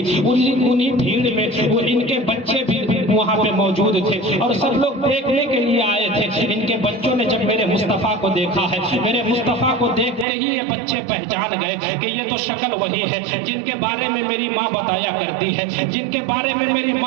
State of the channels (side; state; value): left; drops out; at 10.2 s